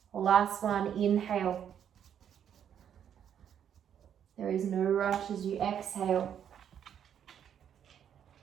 Last one, inhale. There is no rush as you exhale.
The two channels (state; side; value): quieter; left; 9.0 dB